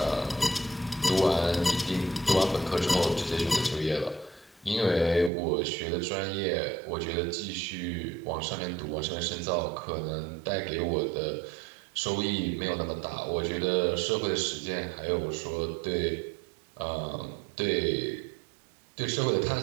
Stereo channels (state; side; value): drops out; left; at 5.3 s